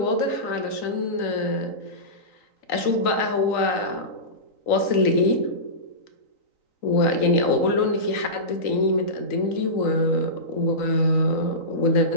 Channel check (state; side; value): late; right; 3.9 ms